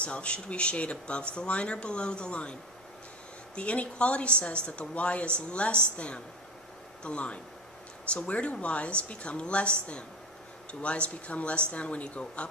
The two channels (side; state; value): both; normal; correlation 0.26